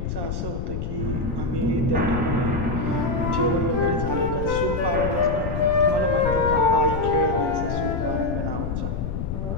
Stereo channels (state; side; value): noise; left; rumble, 3 dB below the sound